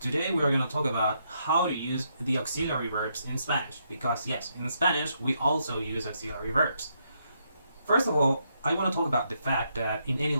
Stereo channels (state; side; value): inverted; both; correlation -0.77